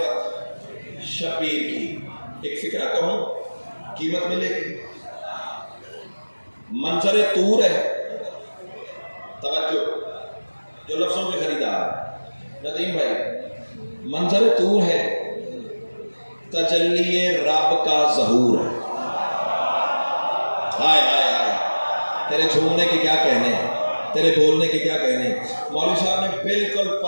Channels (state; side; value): inverted; both; correlation -1.00